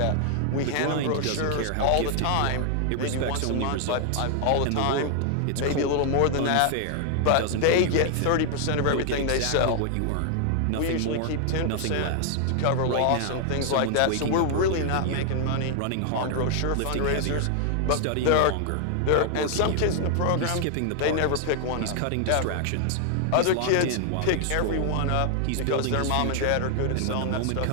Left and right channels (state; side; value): different; both; correlation 0.00